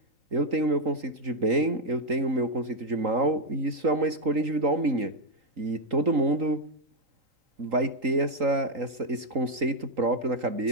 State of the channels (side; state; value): left; late; 3.8 ms